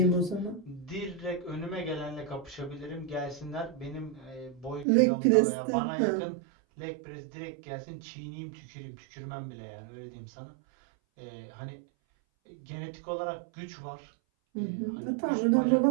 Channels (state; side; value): drops out; left; at 4.9 s